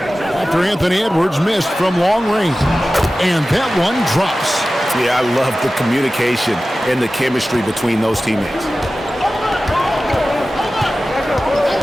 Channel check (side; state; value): both; normal; correlation 0.95